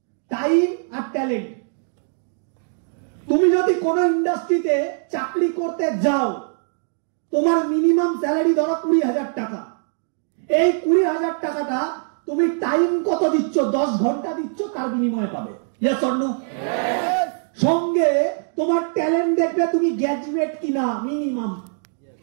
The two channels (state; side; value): silent; left; digital silence